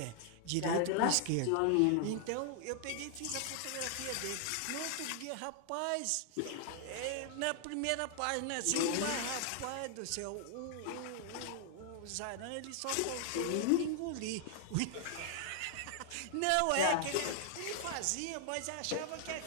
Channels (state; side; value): different; both; correlation 0.00